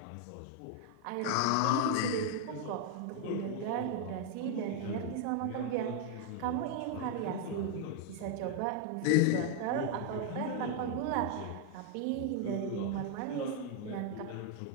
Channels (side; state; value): both; different; correlation 0.00